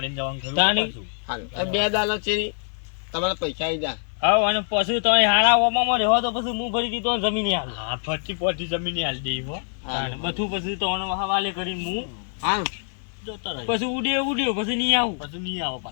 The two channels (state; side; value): silent; right; 62 dB below the other